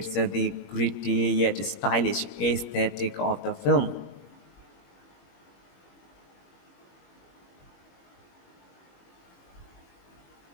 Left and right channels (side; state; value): right; late; 21 ms